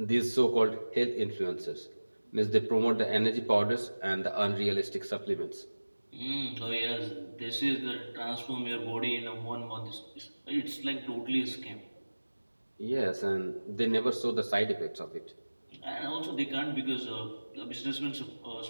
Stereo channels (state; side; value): inverted; both; correlation -1.00